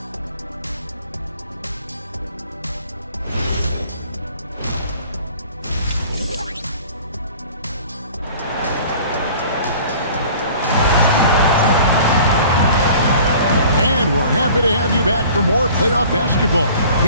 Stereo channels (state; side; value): inverted; both; correlation -0.48